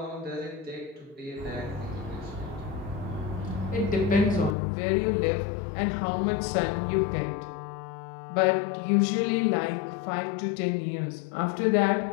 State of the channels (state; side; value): drops out; right; at 4.5 s